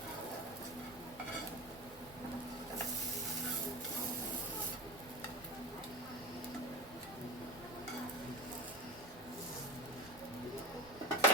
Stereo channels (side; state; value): right; noise; rumble, 21 dB below the sound